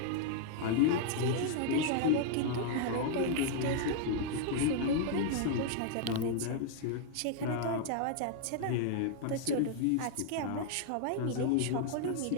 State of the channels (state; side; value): different; both; correlation -0.01